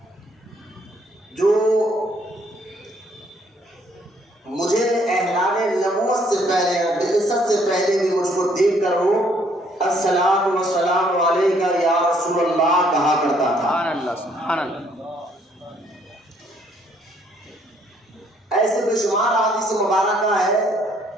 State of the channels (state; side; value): normal; both; correlation 0.66